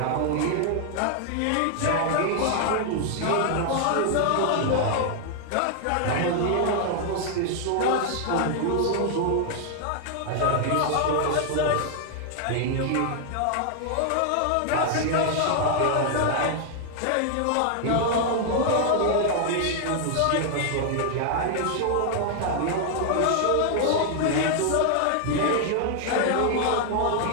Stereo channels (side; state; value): both; different; correlation 0.00